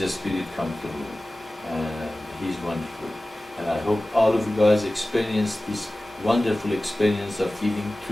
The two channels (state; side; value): normal; both; correlation 0.97